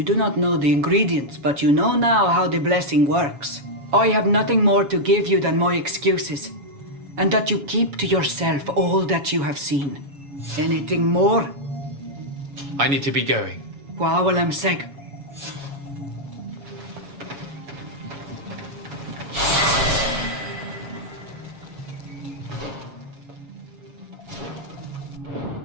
do not know the ingredients, but you know now how the blessing works. I have nothing more to give you than my excuses, and that you keep to yourself all that you have seen. Anything more? I need to be going. Wa'awalem seg.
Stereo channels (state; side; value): late; left; 7.1 ms